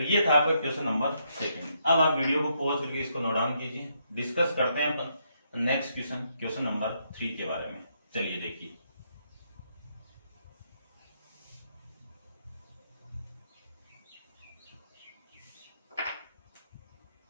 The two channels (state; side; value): inverted; both; correlation -0.76